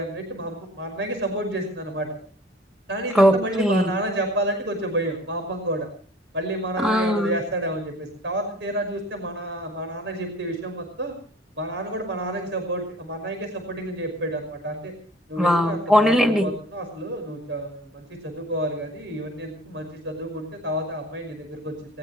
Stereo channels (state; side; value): normal; both; correlation 0.48